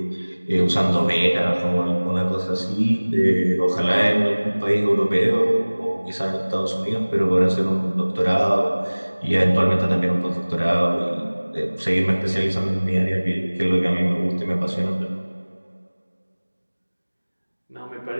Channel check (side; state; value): both; inverted; correlation -1.00